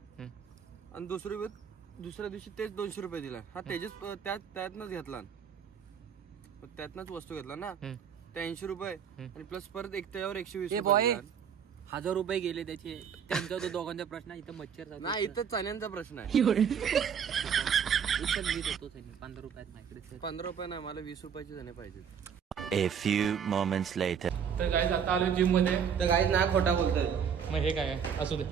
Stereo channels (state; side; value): quieter; left; 7.5 dB